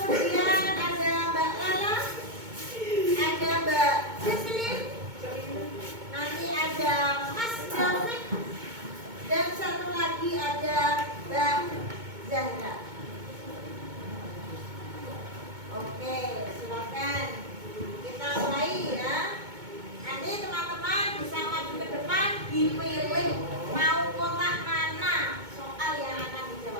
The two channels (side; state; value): left; late; 2.2 ms